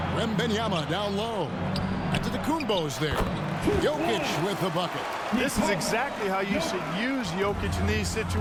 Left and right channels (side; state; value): both; identical; correlation 1.00